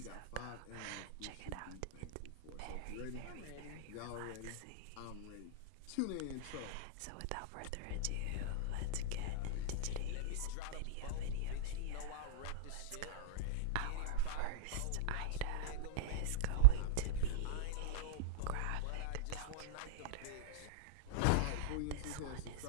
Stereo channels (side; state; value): both; different; correlation -0.03